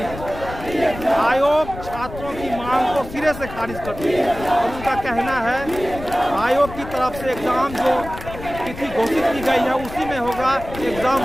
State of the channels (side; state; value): left; noise; rumble, 12 dB below the sound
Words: है। आयोग छात्रों की मांग को सिरे से खारिज कर दी है और उनका कहना है आयोग की तरफ से एग्ज़ाम जो तिथि घोषित की गई है उसी में होगा, एग्ज़ाम